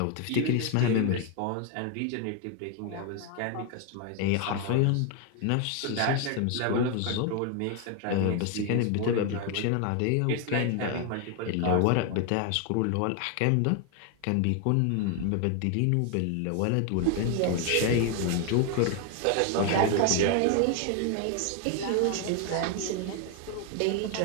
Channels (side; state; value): both; different; correlation 0.01